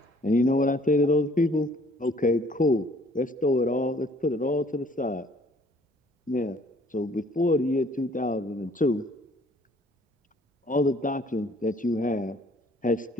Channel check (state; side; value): normal; both; correlation 0.58